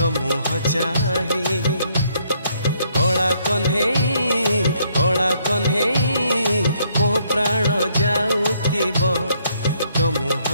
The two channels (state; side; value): inverted; both; correlation -0.69